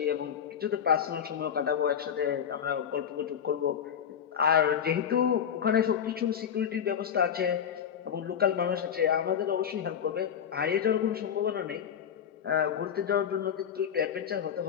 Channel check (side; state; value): right; quieter; 8.4 dB